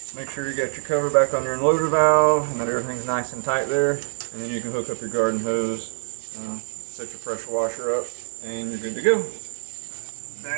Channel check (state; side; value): silent; left; digital silence